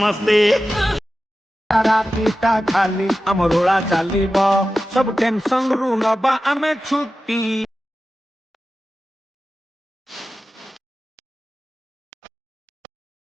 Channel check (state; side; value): normal; both; correlation 0.94